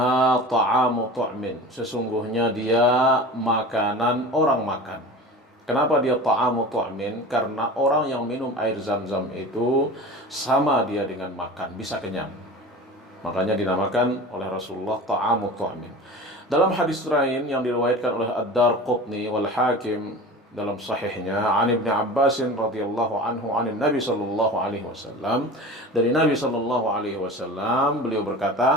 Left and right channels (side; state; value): both; normal; correlation 0.35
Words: ta'amu tu'min. Sesungguhnya dia makanan orang makan. Kenapa dia ta'amu tu'min? Karena orang yang minum air Zam-Zam itu sama dia dengan makan, bisa kenyang. Makanya dinamakan oleh Rasulullah ta'amu tu'min. Dalam hadis lain yang diriwayatkan oleh Ad-Darqutni wal Hakim dalam sahihnya, an Ibnu Abbas radhiyallahu anhu an Nabi sallallahu alaihi wasallam, dari Nabi sallallahu alaihi wasallam beliau